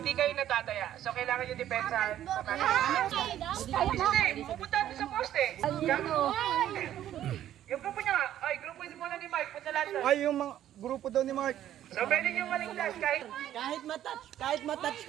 kayo natataya. So, kailangan yung depensahan sa Hindi, pupunta natin sa poste. Yung grupo niya nga, ay, grupo muna ni Mike, punta lahat doon. Ay, yung mga grupo daw ni Mark. So, pwede nyo maligtas Kahit matouch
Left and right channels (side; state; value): left; quieter; 11.8 dB